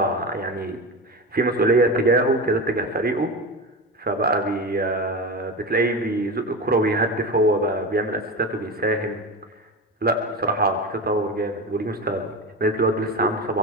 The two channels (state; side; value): normal; both; correlation 0.24